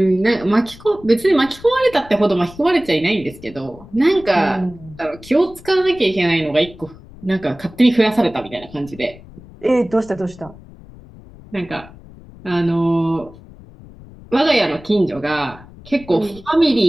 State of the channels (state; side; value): noise; left; rumble, 20 dB below the sound